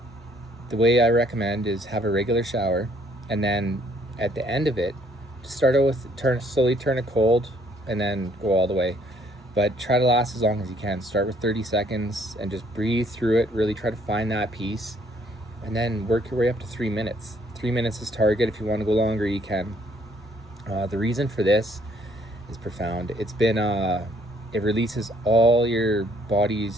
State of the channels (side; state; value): both; normal; correlation 0.64